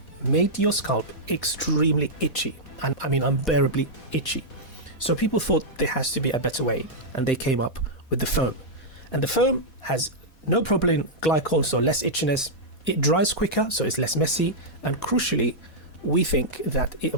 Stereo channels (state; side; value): late; right; 4.1 ms